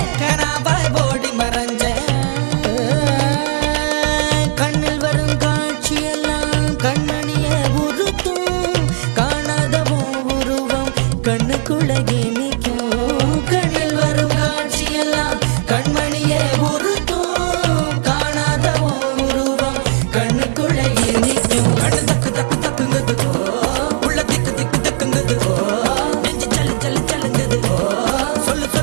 கனாவாய் ஓடி மறைஞ்சேன். கண்ணில் வரும் காட்சியெல்லாம் கண்மணிய உறுத்தும், காணாதவும் உருவம் கண்ணுக்குள்ள இனிக்கும். கண்ணில் வரும் காட்சியெல்லாம் கண்மணிய உறுத்தும், காணாதவும் உருவம் கண்ணுக்குள்ள இனிக்கும். கண்ணு தக்கு தக்கு தக்குங்குது, உள்ள திக்கு திக்கு தக்குங்குது, நெஞ்சு சல்லு சல்லு சல்லுங்குது, சொல்லு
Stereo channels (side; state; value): left; silent; digital silence